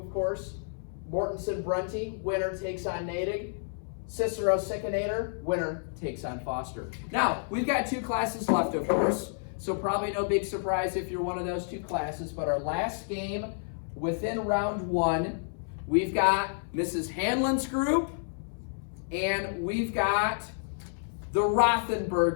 course. Mortensen Brunty, winner takes on Natick. Cicero Sickinator, winner takes on Foster. Now, we've got 2 classes left, of course, so probably no big surprise if you're one of those 2 classes, but our last game within round 1, we've got Mrs. Hanlon's group, and we've got the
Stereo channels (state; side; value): silent; right; 58 dB below the other